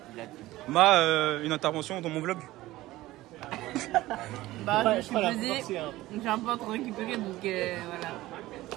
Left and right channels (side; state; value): left; quieter; 17.2 dB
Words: Une intervention dans mon vlog. Bah, je suis pesée, j'ai un peu trop récupéré donc voilà.